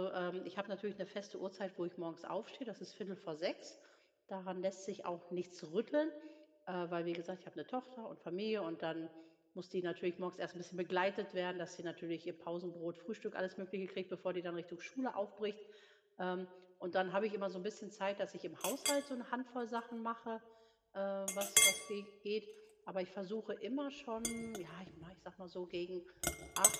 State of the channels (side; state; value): both; identical; correlation 1.00